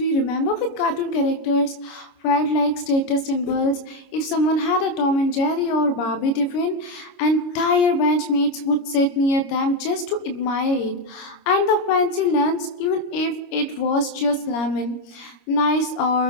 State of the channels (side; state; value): right; late; 26 ms